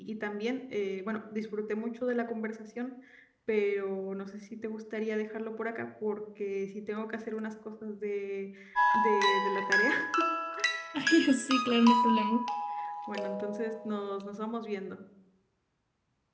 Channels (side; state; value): both; identical; correlation 1.00